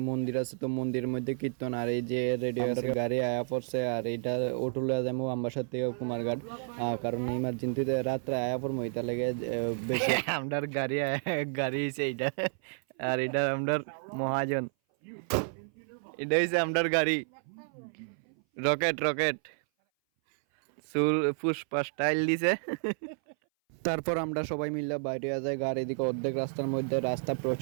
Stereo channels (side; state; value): left; silent; 57 dB below the other